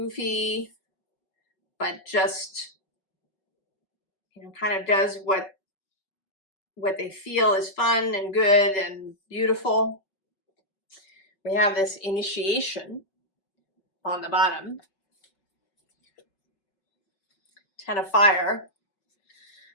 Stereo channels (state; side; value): late; right; 5.1 ms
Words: but just, you know, kind of does what they feel is fun and good and beautiful. We have this initiation on the bottom. 10 of fire,